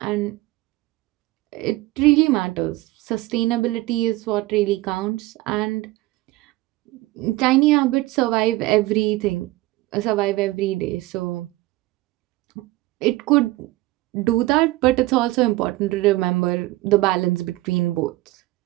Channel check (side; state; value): left; quieter; 19.1 dB